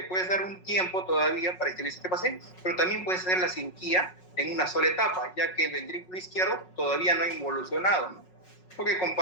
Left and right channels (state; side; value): late; right; 5.5 ms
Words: puedes dar un tiempo todavía para estabilizar este paciente, pero también puedes hacer la cirugía en una sola etapa, ya que el ventrículo izquierdo todavía no ha involucionado, ¿no?, porque